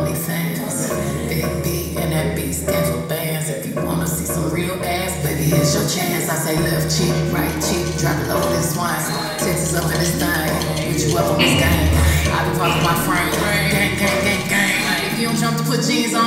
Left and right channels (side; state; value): both; identical; correlation 1.00